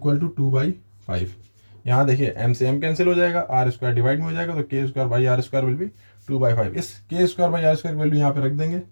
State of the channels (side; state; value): both; inverted; correlation -1.00